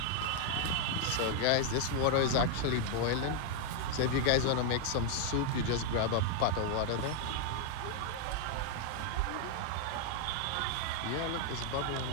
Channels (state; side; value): different; both; correlation 0.00